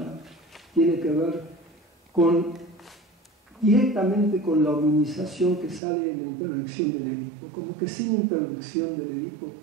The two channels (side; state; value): left; drops out; at 5.8 s